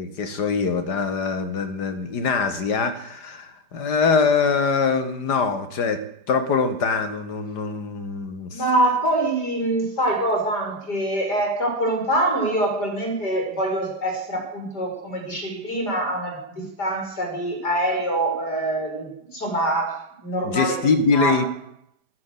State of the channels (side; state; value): right; late; 5.0 ms